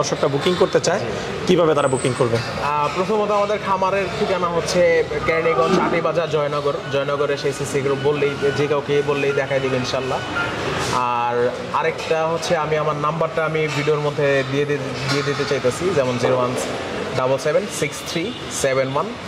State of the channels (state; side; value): identical; both; correlation 1.00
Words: বুকিং করতে চায়, কিভাবে তারা বুকিং করবে? প্রথমত আমাদের খামারের ঠিকানা হচ্ছে কেরানীগঞ্জ আটিবাজার জয়নগরে সেই সিসি গ্রুপ বললেই, যে কাউকে বললেই দেখাই দেবে ইনশাল্লাহ। আর আরেকটা হচ্ছে আমি আমার নাম্বারটা আমি ভিডিওর মধ্যে দিয়ে দিতে চাইতেছি, যেমন